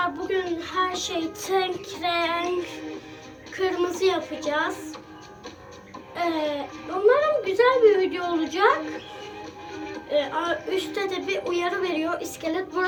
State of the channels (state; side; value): identical; both; correlation 1.00